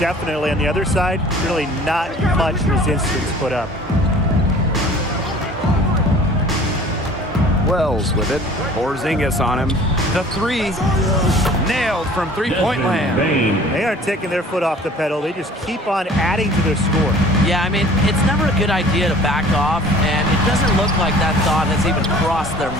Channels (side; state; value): both; normal; correlation 0.48